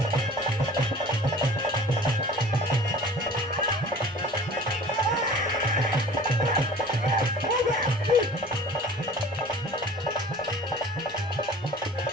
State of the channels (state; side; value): noise; left; rumble, 29 dB below the sound